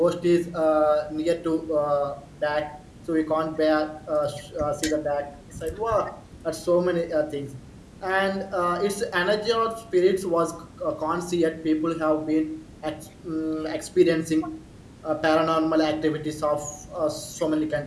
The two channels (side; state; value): both; identical; correlation 1.00